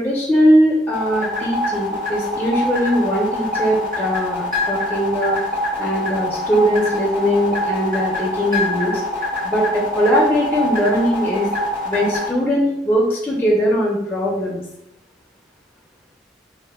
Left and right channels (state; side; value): normal; both; correlation 0.61